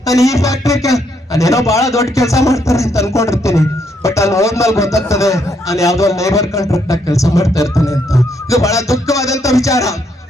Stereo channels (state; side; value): normal; both; correlation 0.74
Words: ನಾನು ಈ ಫ್ಯಾಕ್ಟ್ರಿ ನಾನೇನೋ ಬಹಳ ದೊಡ್ಡ ಕೆಲಸ ಮಾಡ್ತಾರೆ ಅಂತ ಅನ್ಕೊಂಡಿರ್ತೀನಿ. ಬಟ್ ಅಲ್ಲಿ ಹೋದ್ಮೇಲೆ ಗೊತ್ತಾಗ್ತದೆ ನಾನು ಯಾವ್ದೋ ಲೇಬರ್ ಕಾಂಟ್ರಾಕ್ಟ್ ಆಗಿ ಕೆಲಸ ಮಾಡ್ತಾ ಇರ್ತಾನೆ ಅಂತ. ಇದು ಬಹಳ ದುಃಖವಾದಂತ ವಿಚಾರ.